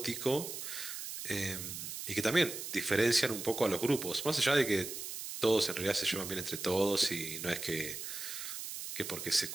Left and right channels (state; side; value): noise; right; hiss, 7 dB below the sound